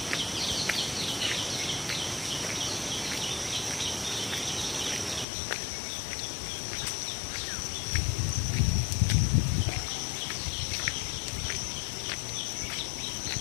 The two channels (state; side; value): drops out; right; at 5.2 s